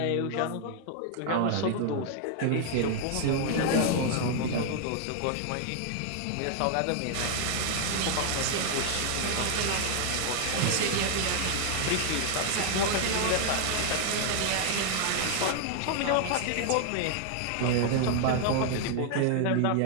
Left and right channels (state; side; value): different; both; correlation 0.00